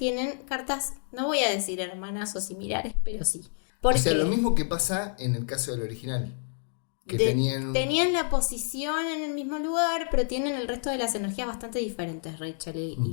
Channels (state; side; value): silent; right; 59 dB below the other